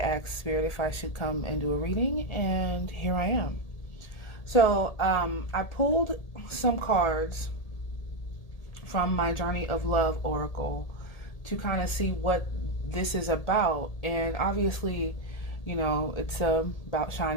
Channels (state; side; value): late; right; 1.8 ms